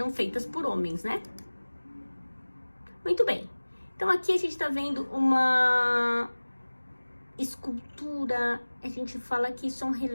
feitas por homens, né? Muito bem. Então, aqui a gente tá vendo uma escultura, a gente fala que isso é um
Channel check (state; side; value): inverted; both; correlation -1.00